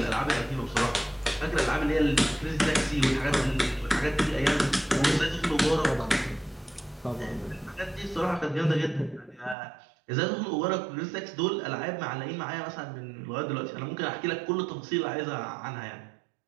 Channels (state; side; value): drops out; left; at 9.6 s